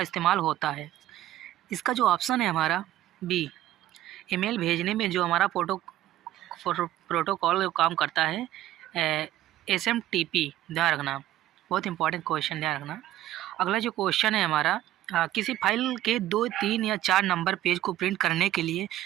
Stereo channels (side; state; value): left; quieter; 13.9 dB